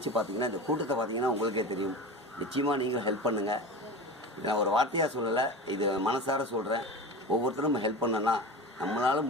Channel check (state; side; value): normal; both; correlation 0.30